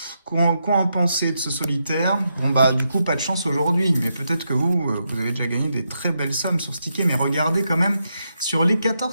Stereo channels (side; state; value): both; inverted; correlation -0.83